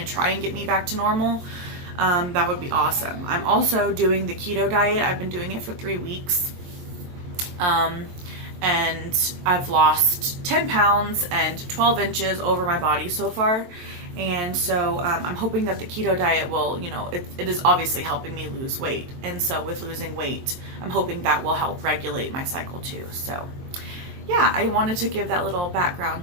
try and get me back to normal. That would be awesome. I'm also doing the keto diet. I've been doing it for 3 weeks. And I've lost 10 pounds and 12 inches over my body so far. And so I'm hoping that the keto diet will, you know, it is obviously helping me lose weight. And so with losing weight, I'm hoping that will help regulate my cycle too. So yeah, I wanted to give that little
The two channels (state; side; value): late; left; 23 ms